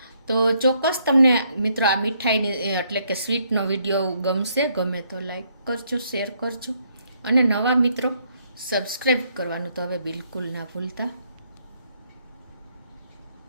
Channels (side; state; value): both; inverted; correlation -0.71